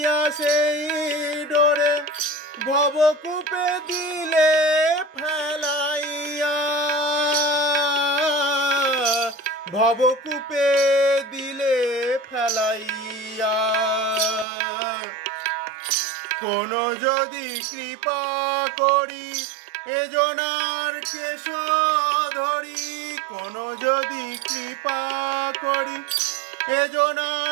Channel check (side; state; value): left; drops out; at 14.5 s